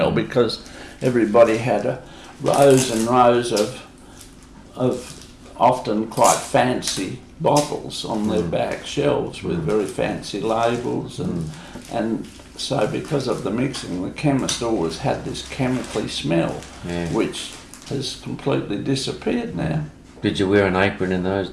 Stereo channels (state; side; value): identical; both; correlation 1.00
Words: because everybody had rows and rows of often quite fancy bottles on their back shelves with very fancy labels, and so because of the mixing, the chemist always had this chemically smell, which has completely disappeared now. Did you wear an apron in those